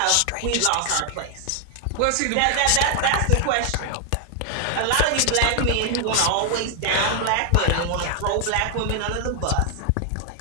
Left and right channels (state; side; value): different; both; correlation 0.00